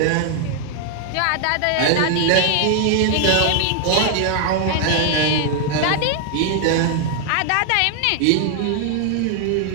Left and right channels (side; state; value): both; different; correlation 0.00